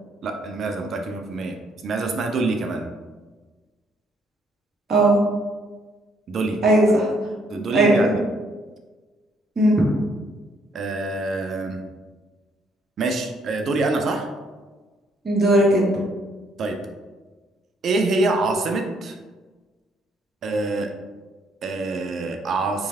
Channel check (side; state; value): both; normal; correlation 0.69